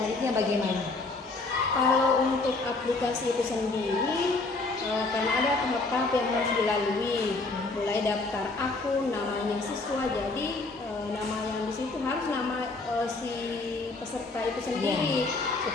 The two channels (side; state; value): right; quieter; 3.5 dB